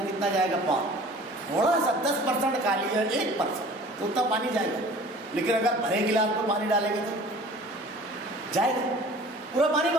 کتنا جائے گا؟ پون. تھوڑا سا 10% خالی ہے، 1% تو اتنا پانی جائے گا. لیکن اگر بھرے گلاس میں پانی ڈالیں گے تو جائے گا، پورا پانی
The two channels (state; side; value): normal; both; correlation 0.46